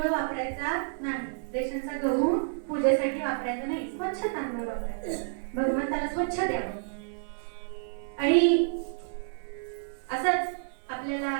वापरायचा नाही, रेशनचा गहू पूजेसाठी वापरायचा नाही, स्वच्छ तांदूळ वापरायचा, भगवंताला स्वच्छ द्यावं. आणि असंच आपल्याला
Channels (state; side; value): silent; left; digital silence